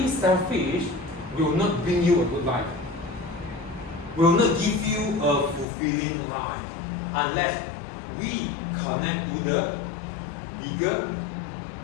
selfish will not bring you a good life. Will not give you a fulfilling life unless we connect to the bigger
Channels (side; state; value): right; drops out; at 5.7 s